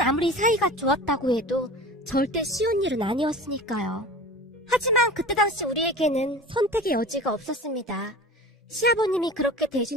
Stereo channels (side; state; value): both; normal; correlation 0.37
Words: 아무리 사이가 좋았다고 해도 절대 쉬운 일은 아니었으니까요. 하지만 그때 당시 우리에게는 선택의 여지가 없었습니다. 시아버님이 그렇게